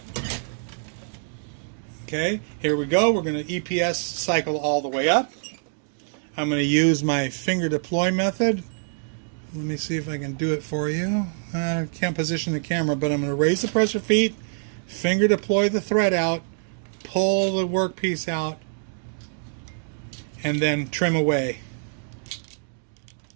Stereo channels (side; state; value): left; silent; digital silence